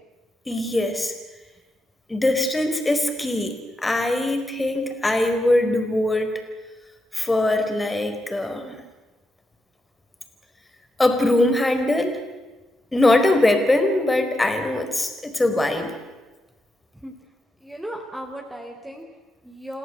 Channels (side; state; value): both; normal; correlation 0.85